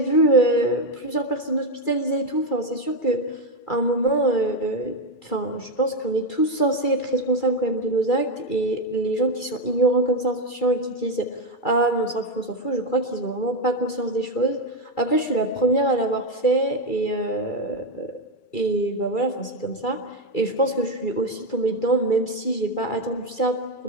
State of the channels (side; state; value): right; late; 2.3 ms